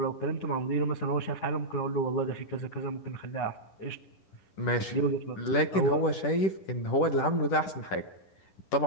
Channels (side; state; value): right; late; 10 ms